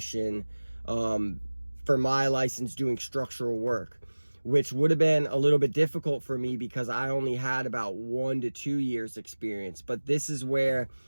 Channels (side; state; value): both; inverted; correlation -1.00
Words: for my license doing structural work, which would have been a little bit difficult for me because I only had about 1 to 2 years experience. But this is where